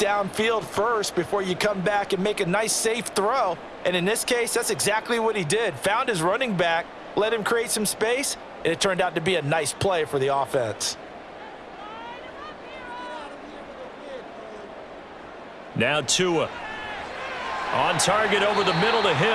first before you come back and make a nice, safe throw. And in this case, that's exactly what he did. Found his running back, let him create some space, and it turned out to be a nice play for the offense. Now Tua. On target over the middle to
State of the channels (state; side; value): identical; both; correlation 1.00